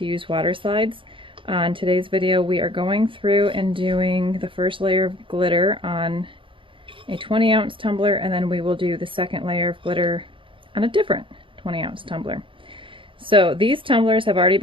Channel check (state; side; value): late; left; 0.25 ms